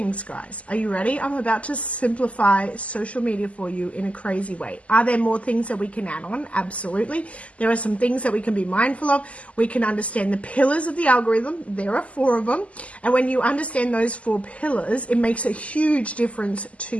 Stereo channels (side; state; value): right; late; 0.065 ms